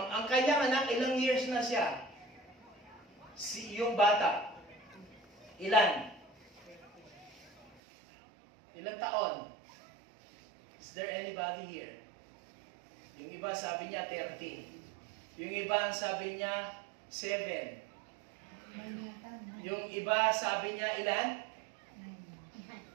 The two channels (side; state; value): left; drops out; at 7.8 s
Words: ang kanyang anak, ilang years na siya? Yung bata. Ilan? Ilang taon? Is there anybody here? Yung iba sabi niya 13. Yung iba ang sabi niya 7. Yung iba sabi niya ilan?